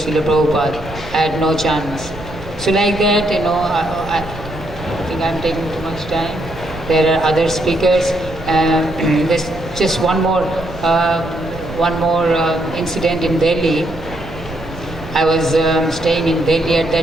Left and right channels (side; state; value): right; noise; rumble, 15 dB below the sound